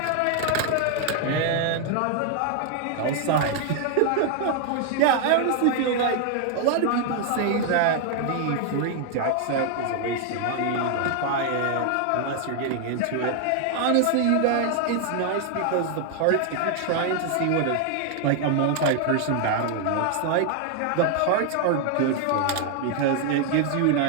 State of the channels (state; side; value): different; both; correlation 0.00